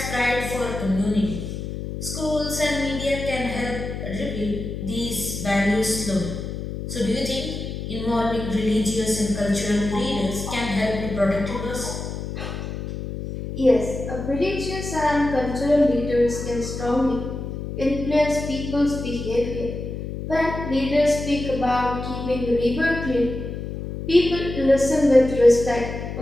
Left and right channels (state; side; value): noise; left; hum, 6 dB below the sound